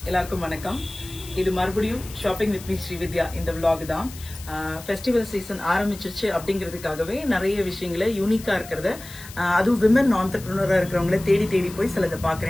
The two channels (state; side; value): noise; left; hiss, 16 dB below the sound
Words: எல்லாருக்கும் வணக்கம். இது மறுபடியும் ஷாப்பிங் வித் மீ ஸ்ரீவித்யா இந்த vlog தான். ஃபெஸ்டிவல் சீசன் ஆரம்பிச்சிருச்சு அப்படிங்கிறதுக்காகவே நிறைய விஷயங்களை யூனிக்கா இருக்கிறத, அதுவும் விமன் ஆண்டர்பிரினரா இருக்கிறவங்கள தேடி தேடி போய் சிலதை